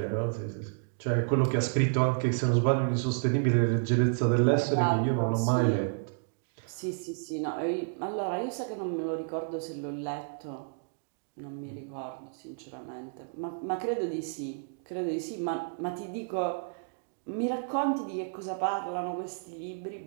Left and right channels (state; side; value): silent; left; digital silence